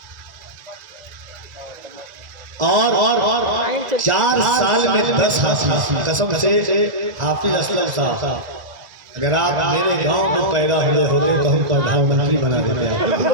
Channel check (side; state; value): left; late; 1.9 ms